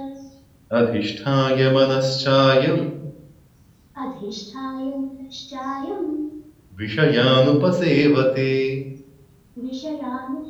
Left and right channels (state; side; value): identical; both; correlation 1.00